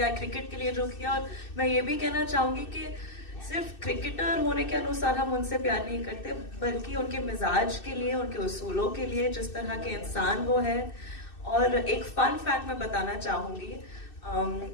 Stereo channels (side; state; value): right; late; 2.6 ms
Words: क्रिकेट के लिए जो किया, और मैं ये भी कहना चाहूंगी कि सिर्फ क्रिकेटर होने के अनुसार हम उनसे प्यार नहीं करते, बल्कि उनके मिजाज के लिए, उनके उसूलों के लिए, जिस तरह के इंसान वो है। और एक फन फैक्ट मैं बताना चाहूंगी,